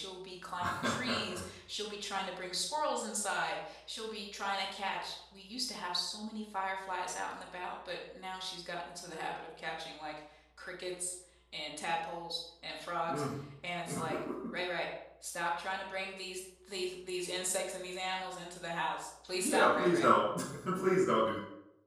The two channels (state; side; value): identical; both; correlation 1.00